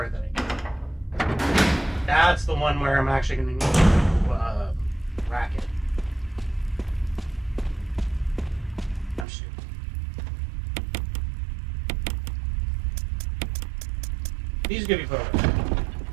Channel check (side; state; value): left; drops out; at 9.2 s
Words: that I need. That's the one where I'm actually going to need to rack it. I'm stupid. These could be put away.